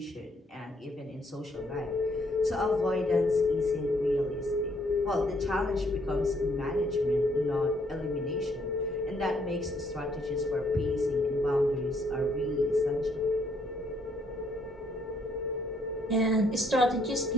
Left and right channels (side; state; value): both; normal; correlation 0.69